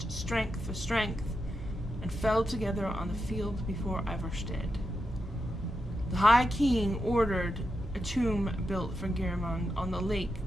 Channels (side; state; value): both; normal; correlation 0.87